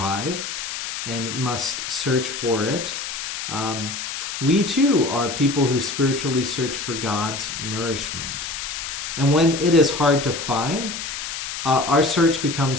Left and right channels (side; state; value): left; noise; hiss, 6 dB below the sound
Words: and must search for it, we too are people who spiritually search for God's nourishment. And when it is hard to find, our search